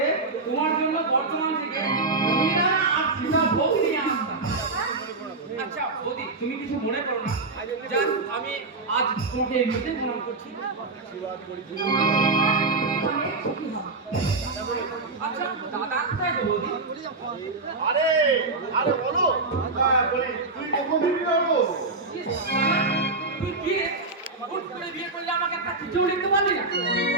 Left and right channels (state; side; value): quieter; left; 3.5 dB